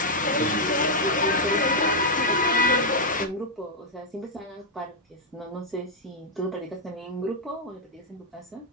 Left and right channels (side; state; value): both; normal; correlation -0.03